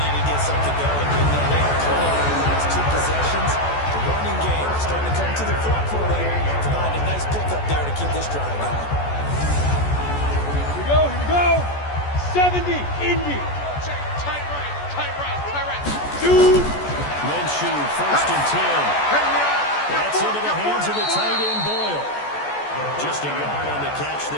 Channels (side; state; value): right; late; 14 ms